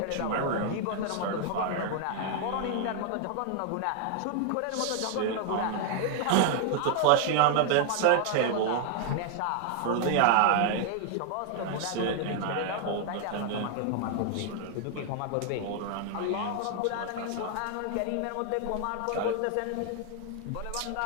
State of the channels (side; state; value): both; different; correlation 0.00